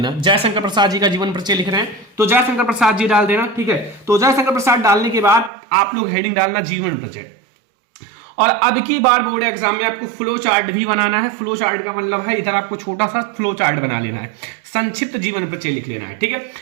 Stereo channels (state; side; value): drops out; left; at 5.5 s